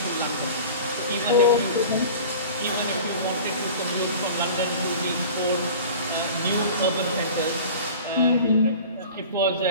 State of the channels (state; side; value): inverted; both; correlation -0.39